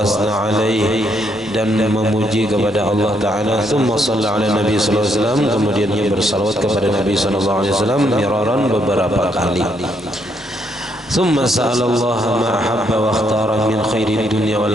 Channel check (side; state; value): both; normal; correlation 0.74